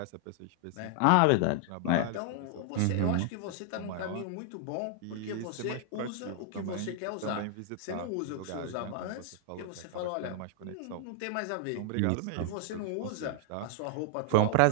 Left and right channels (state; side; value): different; both; correlation 0.00